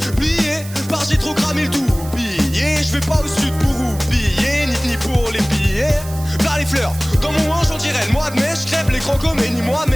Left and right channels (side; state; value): right; noise; hiss, 16 dB below the sound